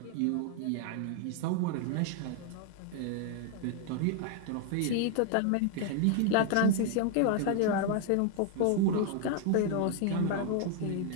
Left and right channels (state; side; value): different; both; correlation 0.00